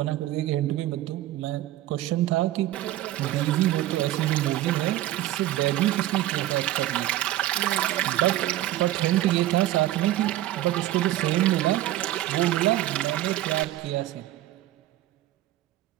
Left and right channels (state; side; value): quieter; left; 14.6 dB